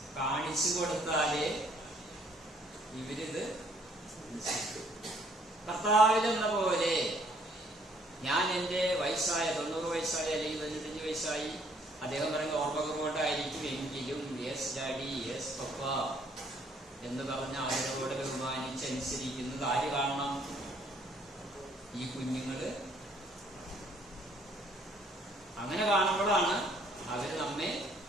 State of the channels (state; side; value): normal; both; correlation 0.63